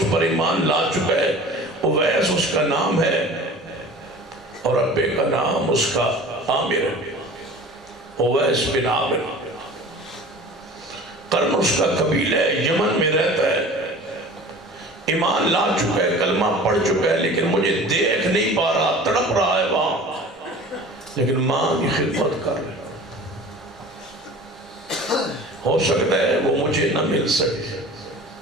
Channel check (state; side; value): normal; both; correlation 0.41